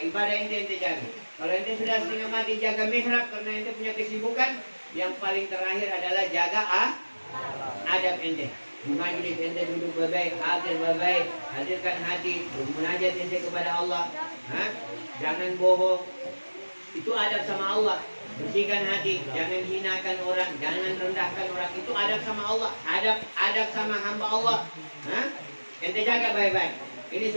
Ibadah ente jaga. Kalau ente sudah setengah mati jaga mihrab karena ente punya kesibukan, yang paling terakhir adalah jaga adab ente. Di majlis ente duduk baik-baik, hadir baik-baik, hadirkan hati, bermunajat ente kepada Allah. Jangan bohong. Itu adab sama Allah. Bersihkan hati, jangan hinakan orang, jangan rendahkan orang. Itu adab sama Allah, adab sama hamba Allah. Ente jaga baik-baik. Ini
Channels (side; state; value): both; inverted; correlation -1.00